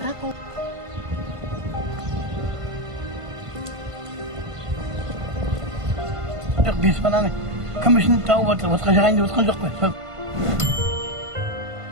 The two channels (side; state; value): left; late; 1.5 ms